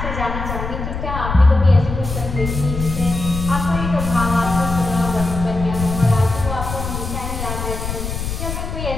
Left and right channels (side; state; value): left; noise; rumble, 5 dB below the sound